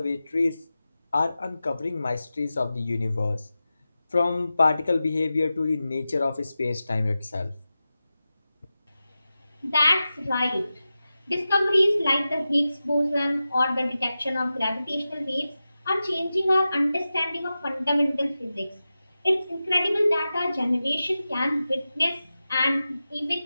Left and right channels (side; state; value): both; inverted; correlation -0.94